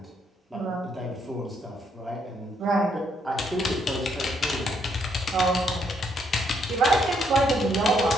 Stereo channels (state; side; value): normal; both; correlation 0.73